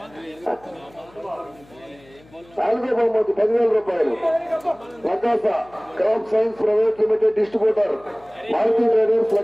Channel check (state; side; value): noise; left; hum, 27 dB below the sound